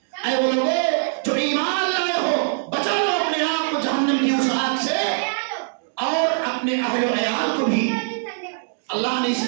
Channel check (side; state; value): left; silent; 64 dB below the other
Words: اے وہ لوگوں جو ایمان لائے ہو، بچا لو اپنے آپ کو جہنم کی اس آگ سے اور اپنے اہل و عیال کو بھی۔ اللہ نے اس